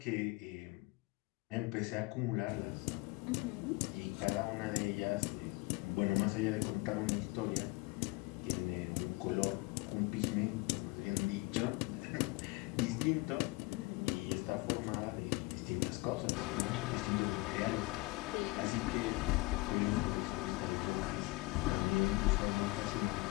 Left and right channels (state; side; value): quieter; right; 23.2 dB